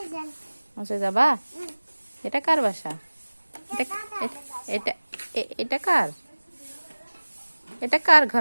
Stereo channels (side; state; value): both; inverted; correlation -1.00